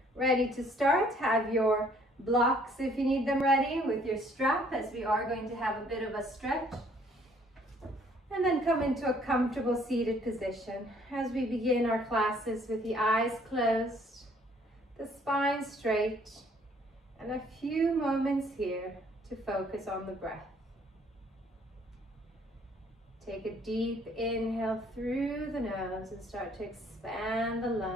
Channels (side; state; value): both; normal; correlation 0.61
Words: Ready to start? Have your blocks if you need them ready with your strap, as we are going to have a bit of a stretch. And then come into a comfortable seated position as we begin our classes with the eyes closed, the spine straight, and a few moments here to focus on the breath. Take a deep inhale through the nose and start to expand the